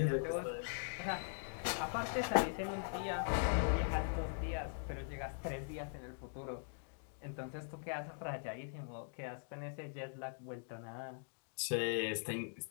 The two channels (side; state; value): right; silent; digital silence